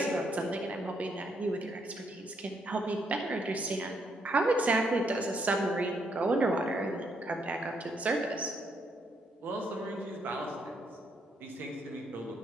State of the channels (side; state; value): both; normal; correlation 0.75